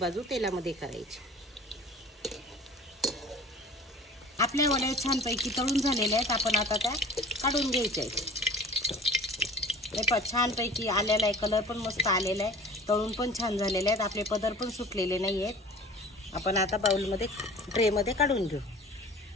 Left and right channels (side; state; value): both; normal; correlation 0.44